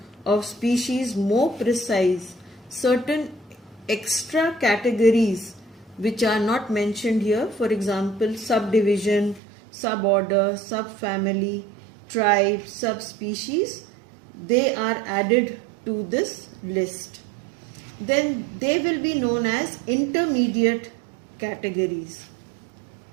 of species more precise, certain extra categories which are not mentioned here, for example subdivision, suborder, subfamily, tribe, subspecies, they are added to this list. Then they will be known as intermediate categories.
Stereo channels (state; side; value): drops out; left; at 9.4 s